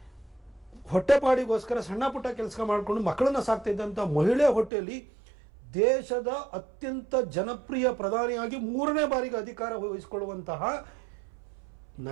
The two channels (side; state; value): left; drops out; at 4.7 s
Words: ಹೊಟ್ಟೆಪಾಡಿಗೋಸ್ಕರ ಸಣ್ಣ ಪುಟ್ಟ ಕೆಲಸ ಮಾಡಿಕೊಂಡು ಮಕ್ಕಳನ್ನ ಸಾಕ್ತಾ ಇದ್ದಂಥ ಮಹಿಳೆ ಹೊಟ್ಟೆಯಲ್ಲಿ ದೇಶದ ಅತ್ಯಂತ ಜನಪ್ರಿಯ ಪ್ರಧಾನಿಯಾಗಿ 3ನೇ ಬಾರಿಗೆ ಅಧಿಕಾರ ವಹಿಸಿಕೊಳ್ಳುವಂತಹ